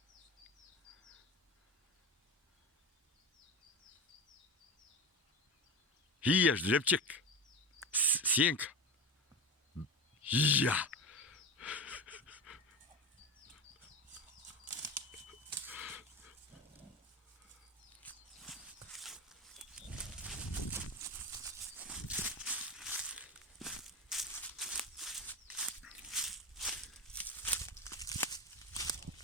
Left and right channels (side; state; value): both; normal; correlation 0.22